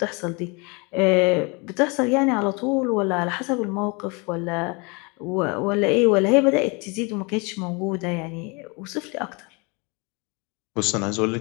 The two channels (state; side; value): quieter; right; 29.6 dB